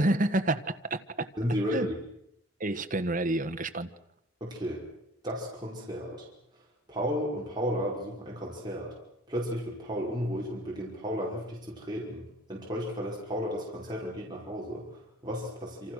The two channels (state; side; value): normal; both; correlation 0.51